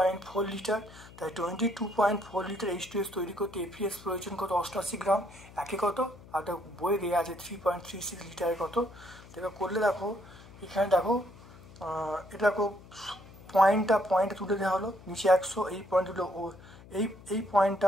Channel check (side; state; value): left; noise; hum, 20 dB below the sound